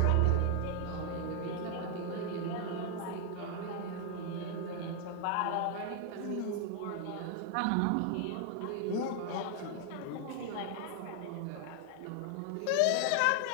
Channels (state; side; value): different; both; correlation 0.00